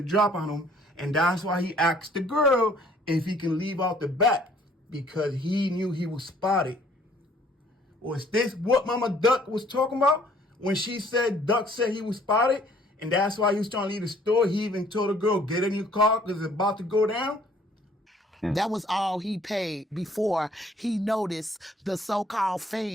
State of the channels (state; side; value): normal; both; correlation 0.59